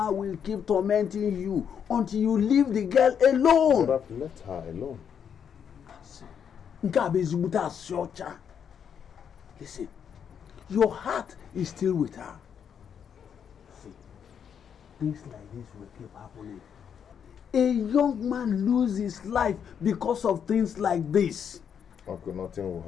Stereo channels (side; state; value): right; quieter; 7.8 dB